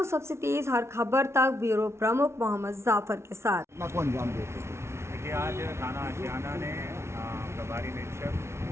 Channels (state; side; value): late; left; 0.13 ms